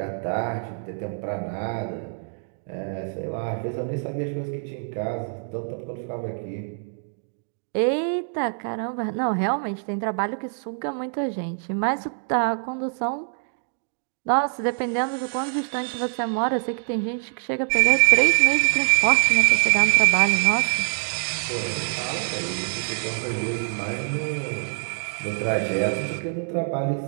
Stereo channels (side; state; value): left; silent; 62 dB below the other